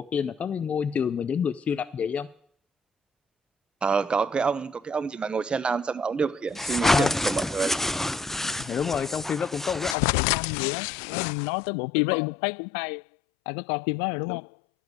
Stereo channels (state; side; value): drops out; right; at 10.0 s